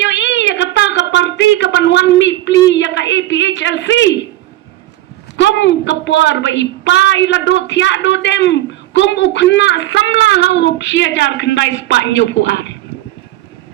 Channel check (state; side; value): quieter; left; 15.2 dB